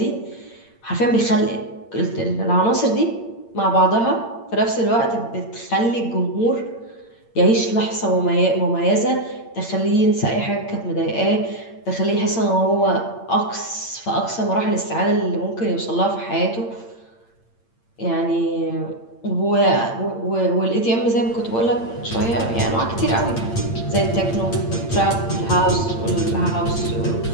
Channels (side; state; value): right; late; 8.8 ms